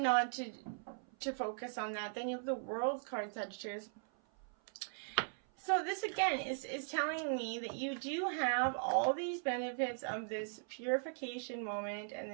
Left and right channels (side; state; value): left; silent; 52 dB below the other